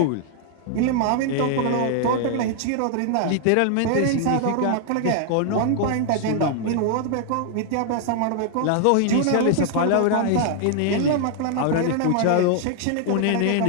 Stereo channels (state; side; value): different; both; correlation 0.00